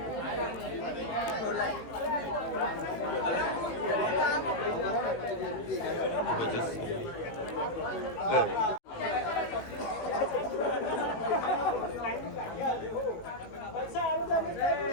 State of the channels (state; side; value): late; right; 18 ms